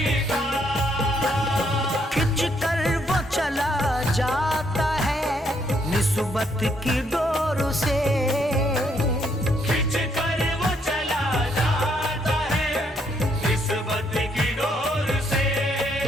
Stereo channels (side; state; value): both; normal; correlation 0.72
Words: का। खिंच कर वो चला जाता है निस्बत की डोर से। खिंच कर वो चला जाता है निस्बत की डोर से।